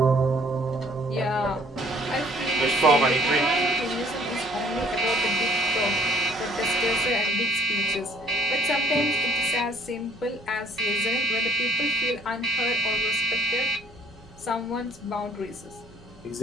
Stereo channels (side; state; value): both; normal; correlation 0.60